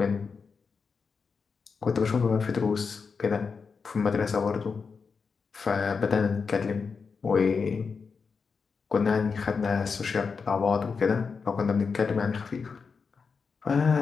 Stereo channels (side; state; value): right; quieter; 5.3 dB